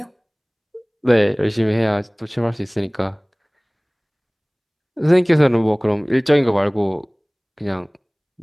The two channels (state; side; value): identical; both; correlation 1.00